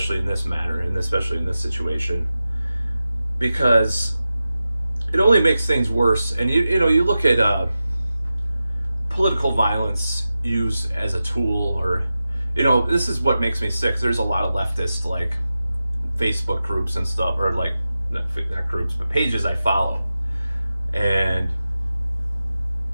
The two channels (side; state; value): both; inverted; correlation -0.93